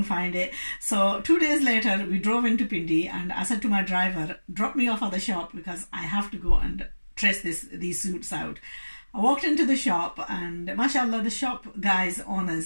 find it. So 2 days later we drove into Pindi, and I said to my driver, drop me off at the shop because I have to go and trace these suits out. I walked into the shop, and mashallah, the shop guys,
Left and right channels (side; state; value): both; inverted; correlation -1.00